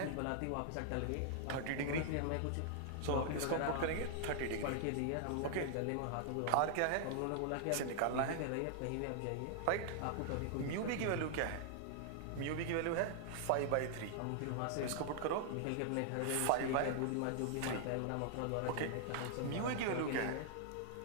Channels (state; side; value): different; both; correlation 0.00